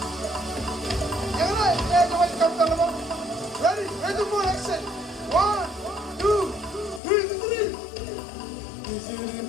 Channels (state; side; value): drops out; right; at 7.0 s